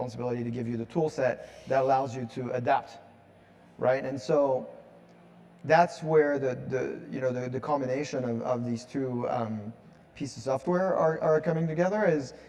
to give you the tool set that allows you to adapt, right? And so that's where the combination of these two pieces of software are coming together, is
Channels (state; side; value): identical; both; correlation 1.00